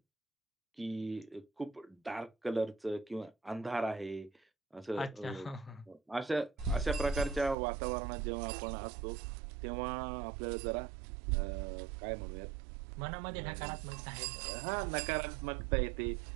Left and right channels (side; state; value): left; drops out; at 7.6 s